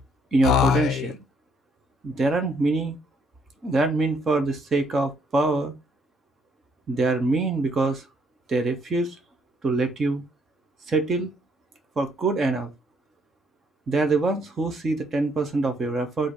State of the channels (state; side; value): normal; both; correlation 0.69